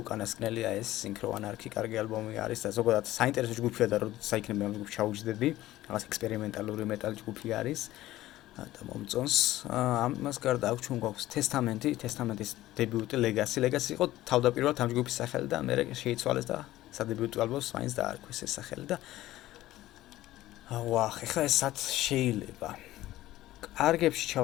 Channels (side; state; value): right; quieter; 15.5 dB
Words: უკანასკნელი აი ეს Synchro Anarchy კარგი ალბომი არის და ზოგადად საინტერესო ჯგუფია და როდესაც საიქნები ამ ჯგუფს ჩაუჯდები, რაღაც ექსპერიმენტალური მეტალ ჯგუფი არის. და მომწონს ამას გარდა აქვს ჩვენ გვაქვს Testament-ის დებიუტი Legacy იყო თავდაპირველად ამ ჯგუფის სახელი და მე შეიცვალეს და სადებიუტო ალბომს მაინც დაარქვეს ეს სახელი და ეხლა ესაც შეიძლება კარგებში